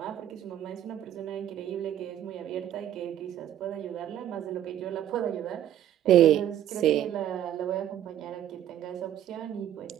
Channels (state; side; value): quieter; left; 11.3 dB